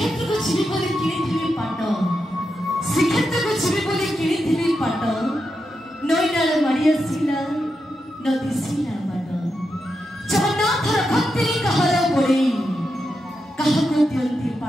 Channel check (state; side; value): normal; both; correlation 0.86